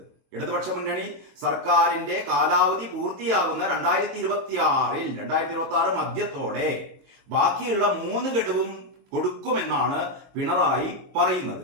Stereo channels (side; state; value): left; late; 22 ms